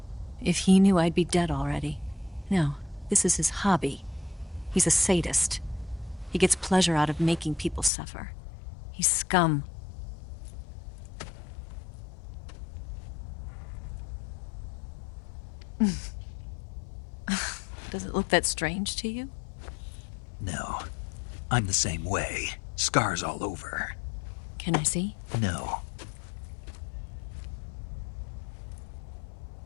If he knew, I'd be dead already. No, this is his hobby. He's a sadist. He gets pleasure out of making people suffer. He's scum. Does it look that strange to you? No. I'm the same way. Scars all over. Can I see? No.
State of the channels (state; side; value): drops out; right; at 7.9 s